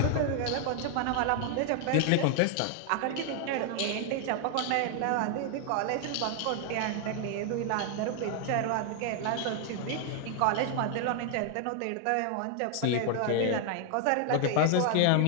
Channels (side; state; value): both; different; correlation 0.00